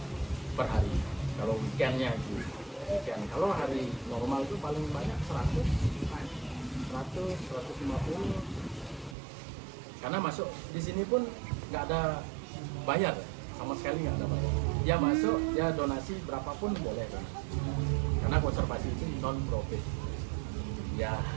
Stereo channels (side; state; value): left; drops out; at 9.2 s